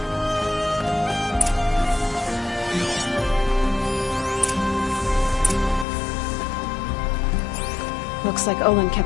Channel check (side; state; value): right; drops out; at 5.9 s